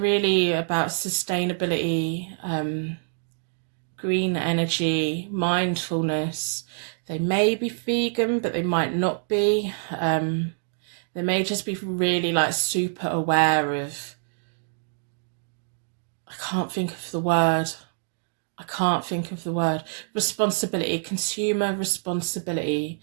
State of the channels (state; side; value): silent; left; digital silence